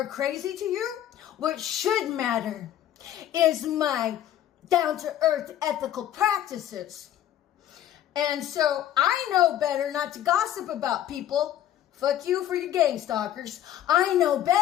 crazy to you, what should matter is my down-to-earth ethical practices. And so I know better not to gossip about people. Fuck you for your gang stalkers. I know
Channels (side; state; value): right; quieter; 11.5 dB